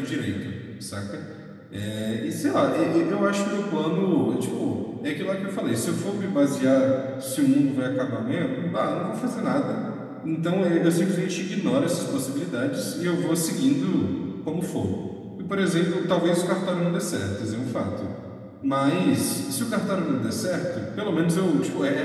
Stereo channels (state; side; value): identical; both; correlation 1.00